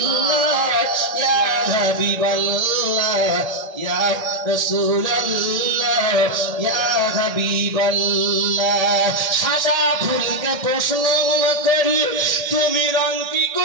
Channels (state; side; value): late; left; 1.8 ms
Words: ইয়া হাবিবাল্লাহ, ইয়া রাসূলুল্লাহ, ইয়া হাবিবাল্লাহ। সাদা ফুলকে প্রশ্ন করি তুমি রংটি